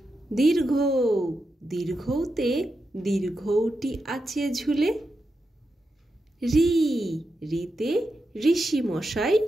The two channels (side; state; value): both; normal; correlation 0.87